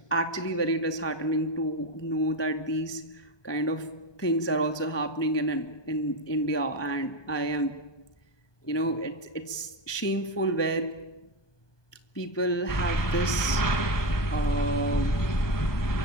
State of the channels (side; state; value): right; late; 1.2 ms